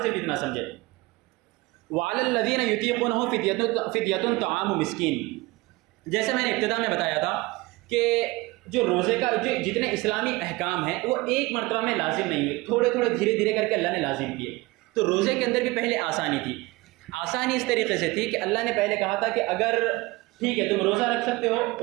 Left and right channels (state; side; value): quieter; left; 21.8 dB